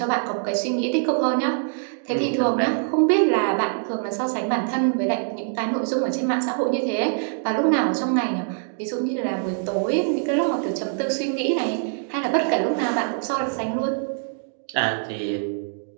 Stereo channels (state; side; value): silent; left; 63 dB below the other